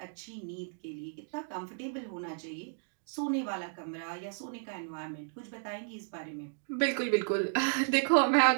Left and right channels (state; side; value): silent; left; digital silence